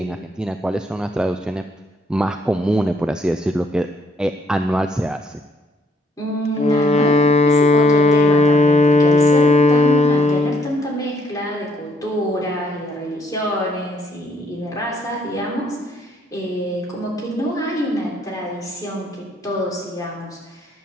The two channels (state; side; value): normal; both; correlation 0.69